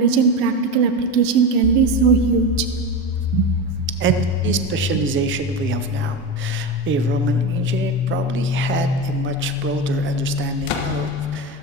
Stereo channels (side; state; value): both; normal; correlation 0.21